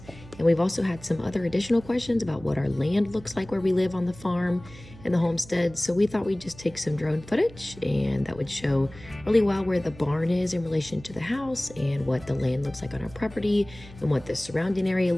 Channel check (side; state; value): right; noise; hum, 19 dB below the sound